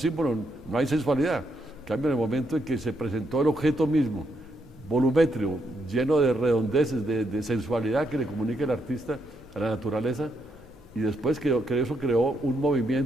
no hay sensualidad. En cambio, en el momento en que se presentó el objeto mismo, volumétrico, lleno de redondeces, de sensualidad que le comunica el artista a la naturaleza, y después que eso creó un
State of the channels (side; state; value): both; normal; correlation 0.77